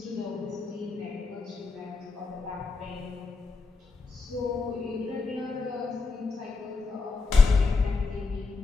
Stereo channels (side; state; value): right; quieter; 4.2 dB